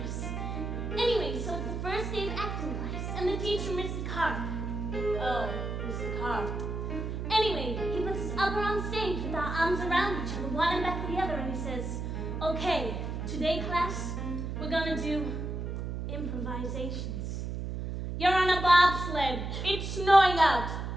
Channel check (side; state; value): right; noise; hum, 4 dB below the sound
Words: Anyway, so it's the first day of acting class, and the teacher, Mr. Carp. Oh, Mr. Carp. Anyway, he puts us up on stage with our arms around each other, one and back to the other, and he says, okay, today, class, we're gonna do improvisations. You're on a bobsled. It's snowing out,